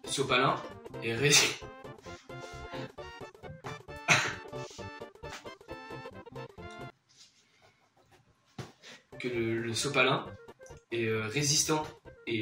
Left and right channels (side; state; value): both; identical; correlation 1.00